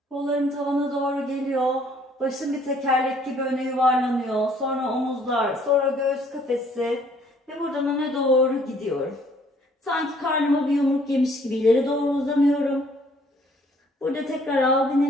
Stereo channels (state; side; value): normal; both; correlation 0.61